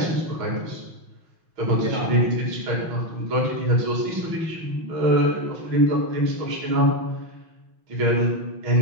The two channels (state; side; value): late; left; 6.1 ms